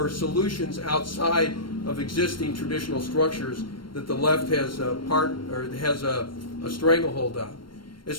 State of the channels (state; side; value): late; right; 0.72 ms